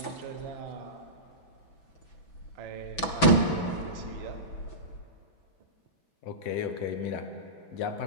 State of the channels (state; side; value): late; right; 6.0 ms